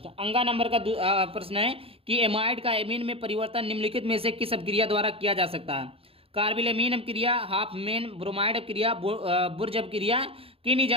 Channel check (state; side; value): late; left; 0.27 ms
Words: अंगा नंबर का प्रश्न है कि एमाइड का एमीन में परिवर्तन निम्नलिखित में से किस अभिक्रिया द्वारा किया जा सकता है? कार्बिलेमीन अपक्रिया, हाफमेन ब्रोमाइड अपक्रिया, बुर्ज अपक्रिया,